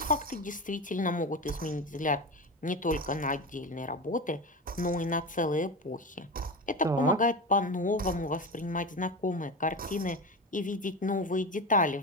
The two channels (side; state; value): both; normal; correlation 0.24